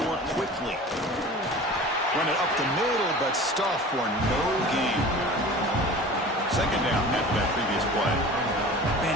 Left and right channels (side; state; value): both; normal; correlation 0.39